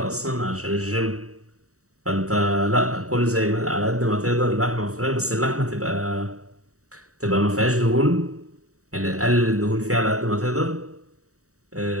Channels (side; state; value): left; late; 0.65 ms